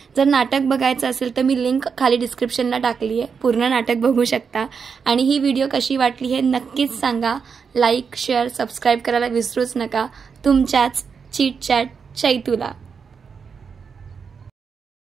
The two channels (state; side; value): quieter; left; 6.0 dB